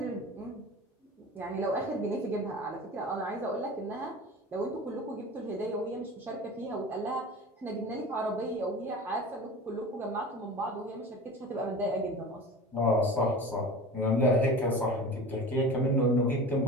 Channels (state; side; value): normal; both; correlation 0.35